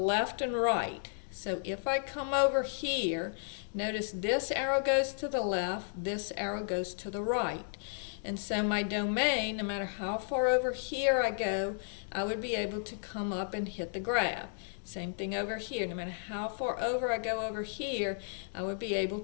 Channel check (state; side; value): silent; right; digital silence